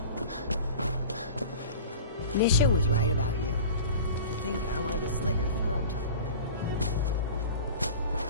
Nisha was right about you. I think I wanted to slit your throat.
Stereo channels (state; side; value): inverted; both; correlation -0.38